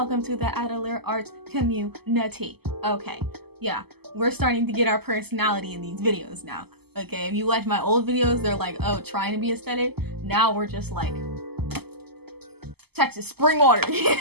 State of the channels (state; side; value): late; left; 0.96 ms